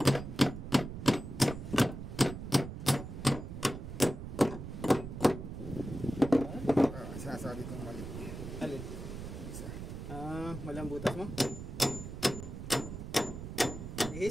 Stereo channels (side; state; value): right; noise; rumble, 8 dB below the sound